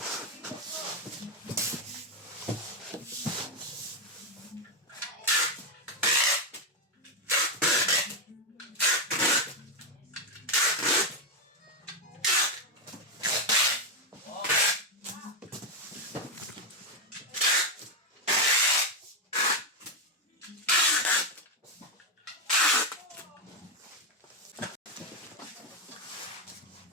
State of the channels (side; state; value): both; normal; correlation 0.05